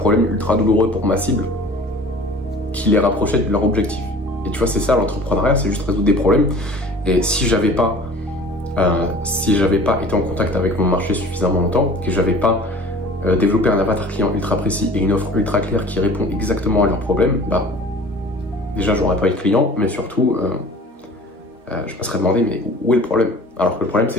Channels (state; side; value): normal; both; correlation 0.45